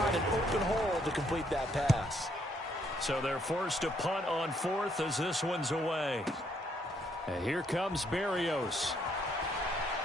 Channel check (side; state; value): both; normal; correlation 0.71